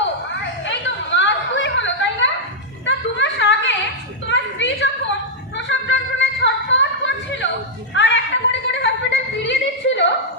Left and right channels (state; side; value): normal; both; correlation -0.06